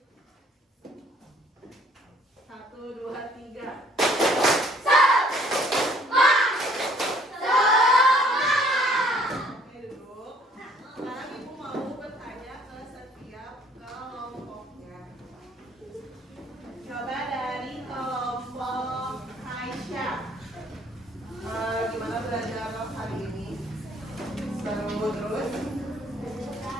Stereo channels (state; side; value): normal; both; correlation 0.60